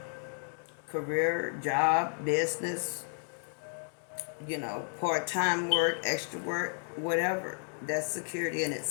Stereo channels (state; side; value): silent; right; 56 dB below the other